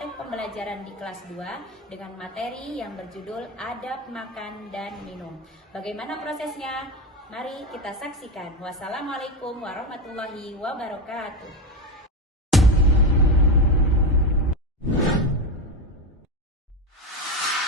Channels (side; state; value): both; normal; correlation 0.15